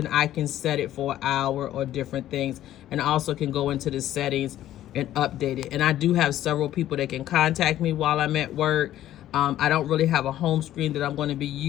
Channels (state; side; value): quieter; right; 12.9 dB